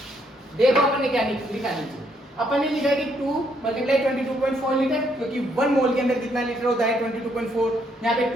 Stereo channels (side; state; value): both; normal; correlation 0.72